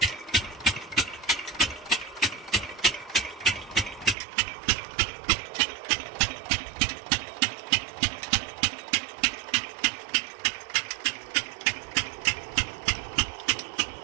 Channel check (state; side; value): drops out; left; at 4.2 s